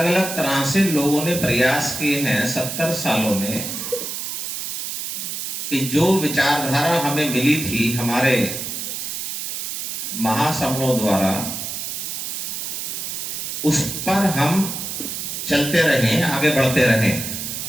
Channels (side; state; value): right; noise; hiss, 5 dB below the sound